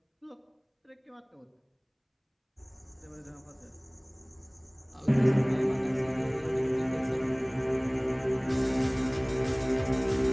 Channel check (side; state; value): both; identical; correlation 1.00